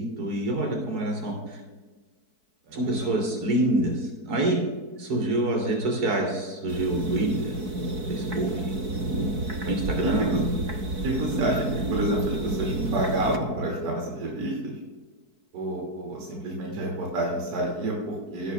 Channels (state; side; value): late; left; 4.6 ms